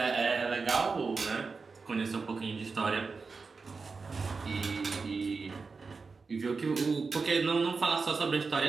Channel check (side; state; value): left; quieter; 4.5 dB